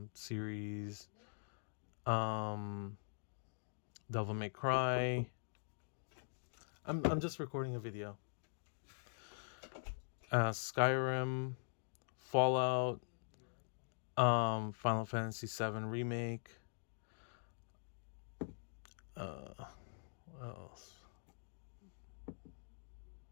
series, um, Devil May Cry. I'm just recording a video. Skyrim, Fallout, Final Fantasy VII Remake. What else?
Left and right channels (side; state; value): right; silent; digital silence